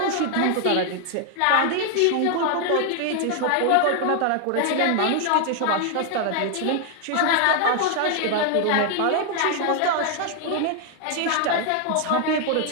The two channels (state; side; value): different; both; correlation 0.00